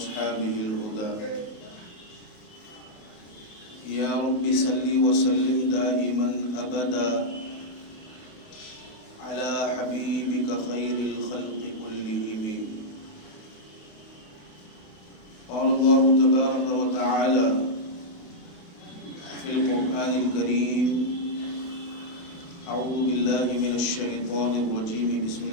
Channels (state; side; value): late; right; 28 ms